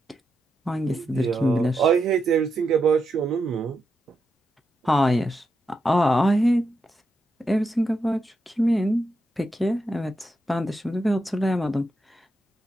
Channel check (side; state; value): both; normal; correlation 0.85